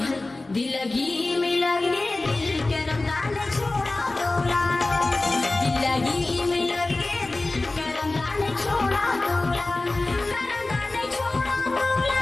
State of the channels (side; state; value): right; quieter; 3.1 dB